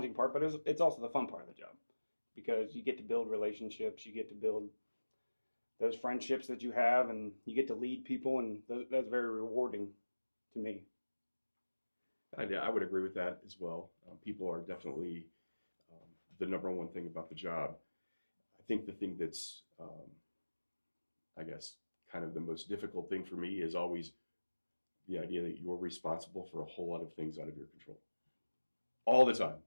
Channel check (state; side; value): inverted; both; correlation -1.00